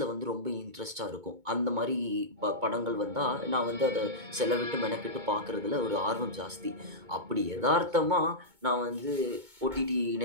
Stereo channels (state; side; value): late; left; 2.2 ms